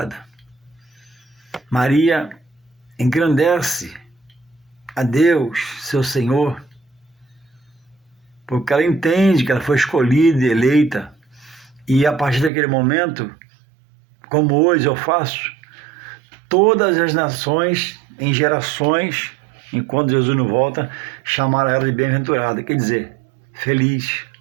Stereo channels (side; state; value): left; drops out; at 12.5 s